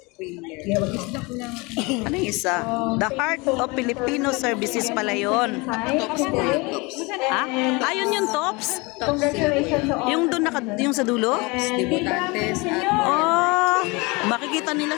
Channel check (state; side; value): quieter; right; 26.3 dB